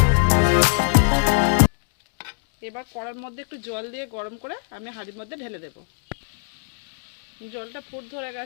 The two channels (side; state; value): right; silent; 63 dB below the other